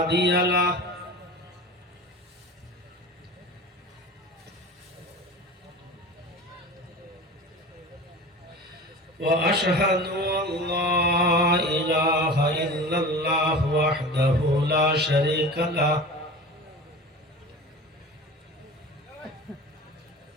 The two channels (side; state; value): both; normal; correlation 0.35